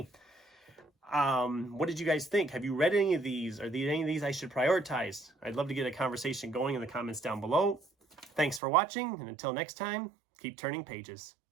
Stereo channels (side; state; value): left; drops out; at 8.6 s